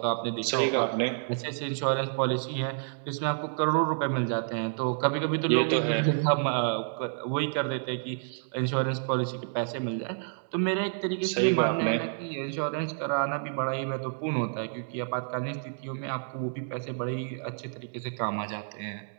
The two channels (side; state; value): left; silent; digital silence